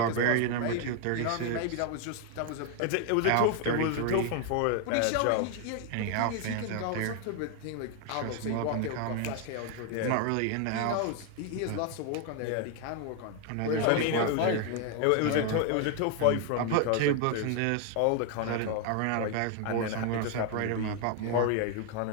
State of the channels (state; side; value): different; both; correlation 0.00